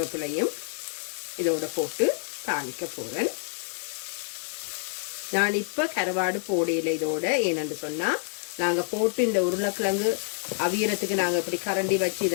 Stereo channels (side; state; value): right; silent; digital silence